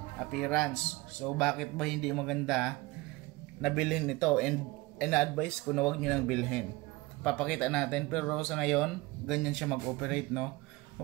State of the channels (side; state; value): left; quieter; 21.9 dB